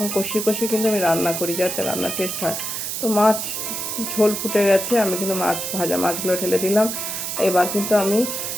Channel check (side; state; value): right; noise; hiss, 4 dB below the sound